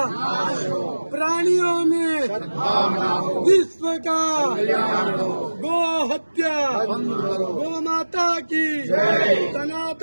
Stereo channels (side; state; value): both; inverted; correlation -1.00